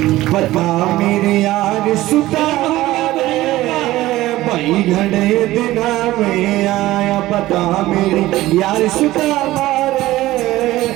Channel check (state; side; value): quieter; left; 16.6 dB